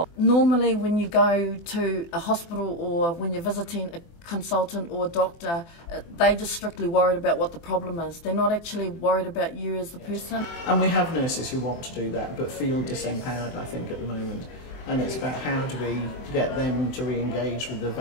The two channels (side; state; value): right; late; 24 ms